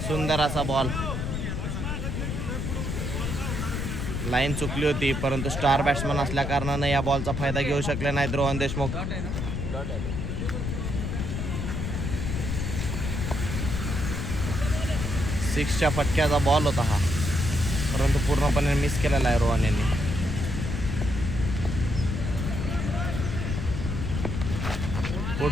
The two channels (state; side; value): noise; left; rumble, 2 dB below the sound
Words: सुंदर असा बॉल. लाईन चुकली होती परंतु स्टार बॅट्समन असल्या कारणाने या बॉलचा फायदा घेऊ शकले नाहीत रोहन देशमुख. सिक्सच्या फटक्याचा बॉल होता हा परंतु पूर्णपणे मिस केलेला आहे रोहन यांनी.